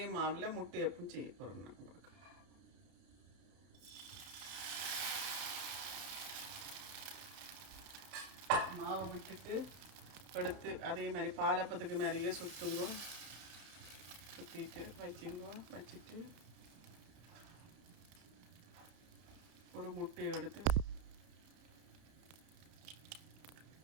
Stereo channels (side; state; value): left; late; 31 ms